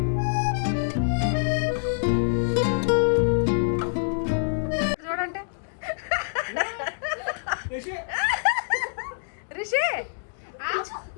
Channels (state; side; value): silent; right; digital silence